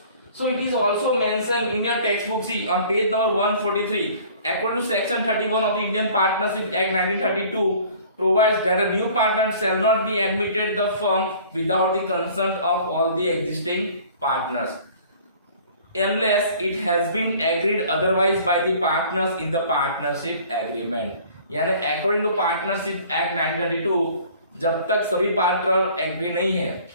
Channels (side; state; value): both; inverted; correlation -0.50